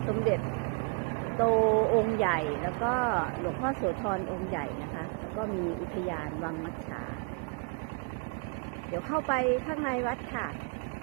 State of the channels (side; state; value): left; quieter; 36.5 dB